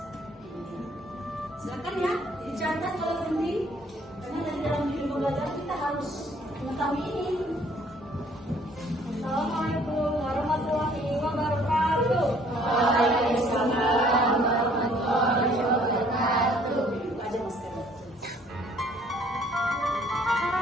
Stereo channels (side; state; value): both; normal; correlation 0.60